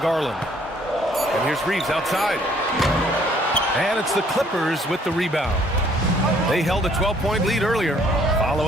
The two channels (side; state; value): both; normal; correlation 0.62